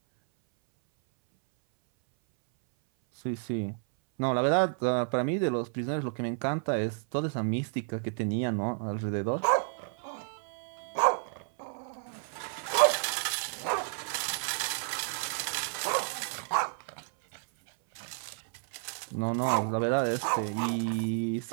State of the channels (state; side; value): silent; left; 57 dB below the other